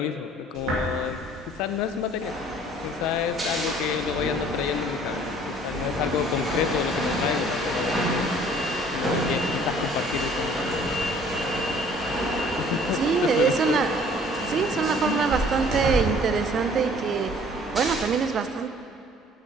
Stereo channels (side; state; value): both; normal; correlation 0.54